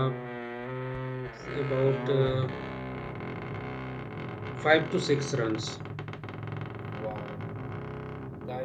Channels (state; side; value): identical; both; correlation 1.00